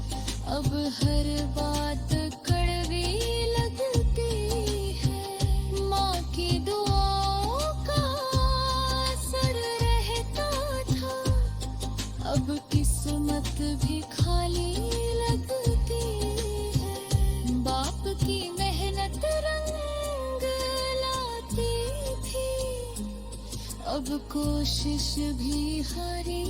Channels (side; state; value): both; identical; correlation 1.00